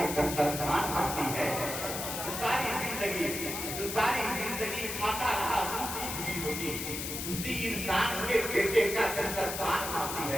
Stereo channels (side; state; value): left; noise; hiss, 5 dB below the sound